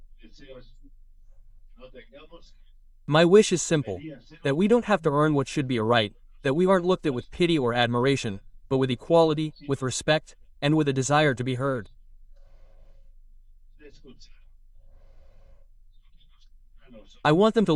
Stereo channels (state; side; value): identical; both; correlation 1.00